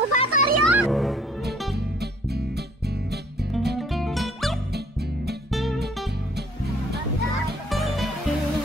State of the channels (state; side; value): normal; both; correlation 0.59